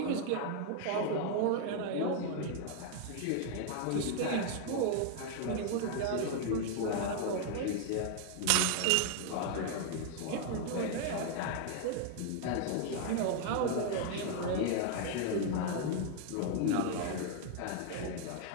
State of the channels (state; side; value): different; both; correlation 0.00